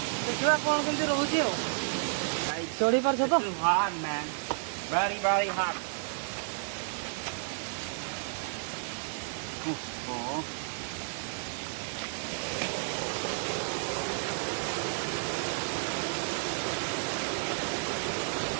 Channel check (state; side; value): silent; left; 57 dB below the other